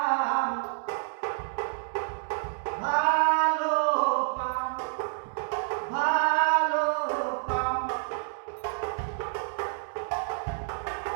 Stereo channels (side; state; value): left; silent; digital silence